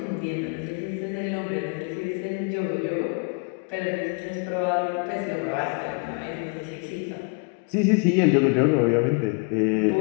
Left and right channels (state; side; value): quieter; right; 35.5 dB